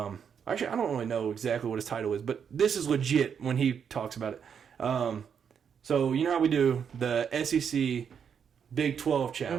I don't really know exactly what his title is, but this is legit when he talks about it. So, you know how we do the SEC Big 12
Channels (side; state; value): left; quieter; 7.4 dB